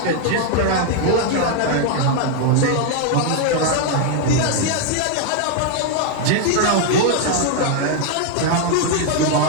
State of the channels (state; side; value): different; both; correlation 0.00